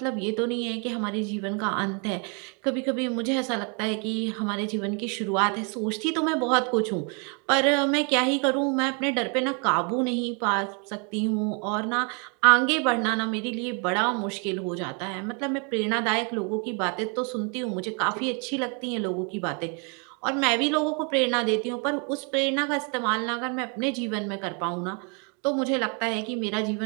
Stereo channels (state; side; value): quieter; left; 36.1 dB